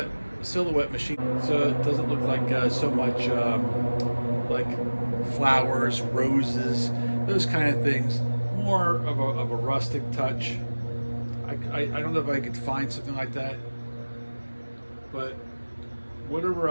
machine, so it doesn't look like so much like flowers, roses, those kind of things. More of a rustic touch. I don't know if I could find something like that, but whatever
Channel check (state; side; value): inverted; both; correlation -1.00